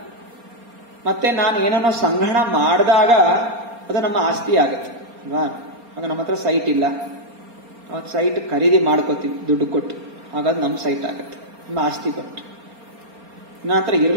ಮತ್ತೆ ನಾನು ಏನನ್ನೋ ಸಂಗ್ರಹಣ ಮಾಡಿದಾಗ ಅದು ನಮ್ಮ ಆಸ್ತಿ ಆಗುತ್ತೆ ಅಲ್ವಾ. ಆಗ ನಮ್ಮ ಹತ್ರ ಸೈಟ್ ಇಲ್ಲ, ಅವಾಗ ಸೈಟ್ ಖರೀದಿ ಮಾಡ್ಕೋತೀವಿ ದುಡ್ಡು ಕೊಟ್ಟು, ಹಾಗಾದ್ರೆ ನಮ್ಮ ಸೈಟ್ ಆಗುತ್ತೆ, ನಮ್ಮ ಆಸ್ತಿ ಬಟ್ಟು. ನನ್ನ ಹತ್ರ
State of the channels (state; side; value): late; left; 4.3 ms